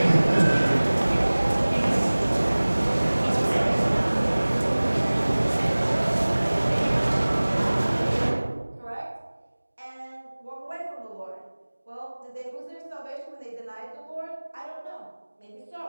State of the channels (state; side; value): inverted; both; correlation -1.00